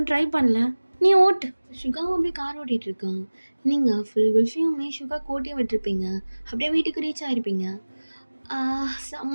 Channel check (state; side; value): inverted; both; correlation -1.00